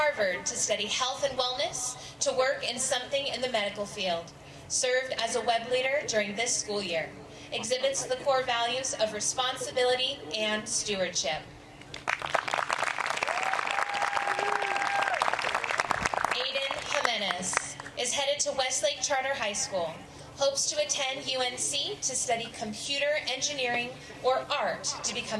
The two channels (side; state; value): both; identical; correlation 1.00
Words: to study health and wellness, to work in something in the medical field, served as a web leader during this school year, exhibits the core values of responsibility and stewardship. Aiden Jimenez is headed to Westlake Charter High School, hopes to attend UNC to study computer engineering or art to